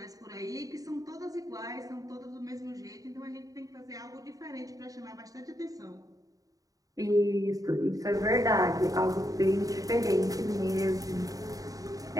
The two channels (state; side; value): late; left; 0.17 ms